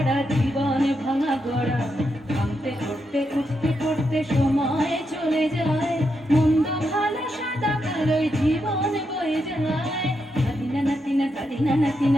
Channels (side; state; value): both; normal; correlation 0.83